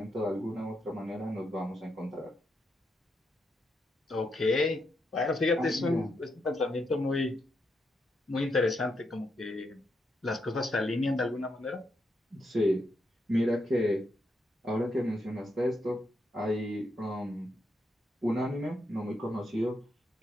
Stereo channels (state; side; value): normal; both; correlation 0.81